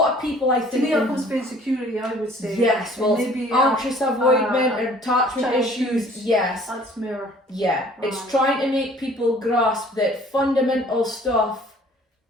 of people, I think. To me, it comes to insecurity, I would say. Yes, well, maybe anxious avoidment, attachment issues. Yes. That's more. Yeah, it's trying to make people grasp that fundamental stuff,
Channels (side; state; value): both; normal; correlation 0.54